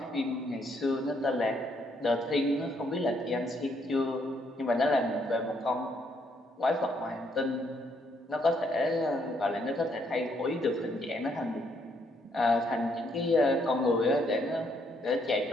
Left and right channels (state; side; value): normal; both; correlation 0.72